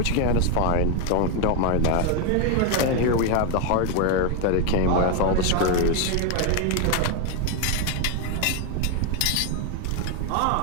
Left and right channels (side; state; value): both; different; correlation 0.01